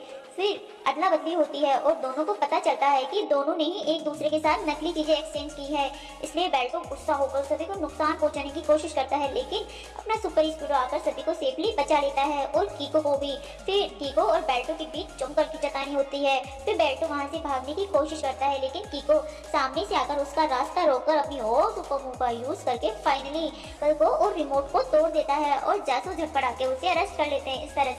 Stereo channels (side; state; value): both; identical; correlation 1.00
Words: फिर अदला बदली होती है और दोनों को पता चलता है कि दोनों ने ही एक दूसरे के साथ नकली चीजें एक्सचेंज की है, इसलिए बेल्टो गुस्सा होकर सभी को नुकसान पहुंचाने की कोशिश करता है लेकिन अपना सुपर स्पीडो आकर सभी को सेफली बचा लेता है और कीको को भी। फिर कीको और बेल्टो के बीच जमकर खींचातानी होती है। फिर बेल्टो वहां से भागने की कोशिश करता है लेकिन कीको सामने से आकर उसका रास्ता रोककर अपनी और सुपर मूव का यूज करके फाइनली कल को और रिमोट को तोड़ देता है और जासूस झटपटा के उसे अरेस्ट कर लेते हैं। इस तरह